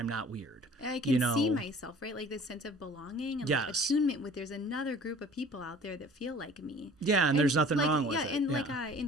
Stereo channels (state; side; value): normal; both; correlation 0.48